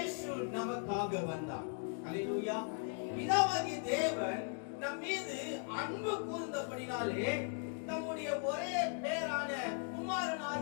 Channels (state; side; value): quieter; right; 39.7 dB